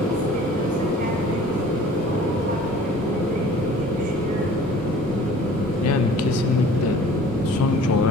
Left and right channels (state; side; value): normal; both; correlation 0.49